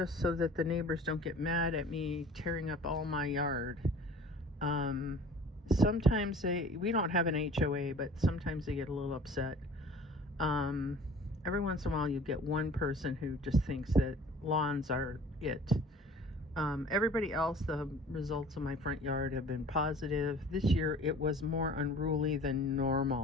so that the neighbors don't get mad at me tearing up all my yard. Sometimes we don't have an HOA, but sometimes they get a little upset. Every once in a while you get one person who just thinks that lawns are it. Everybody else, the results of my front yard have been positive. This year it was more unruly than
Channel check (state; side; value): normal; both; correlation 0.46